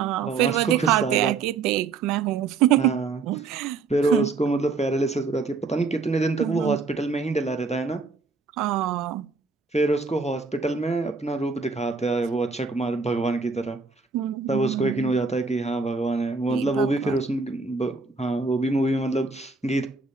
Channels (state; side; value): quieter; left; 4.4 dB